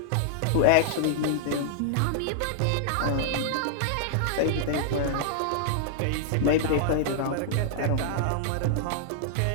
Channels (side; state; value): both; different; correlation -0.01